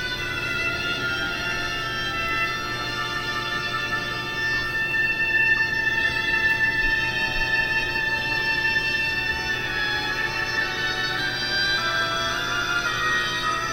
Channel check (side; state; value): both; identical; correlation 1.00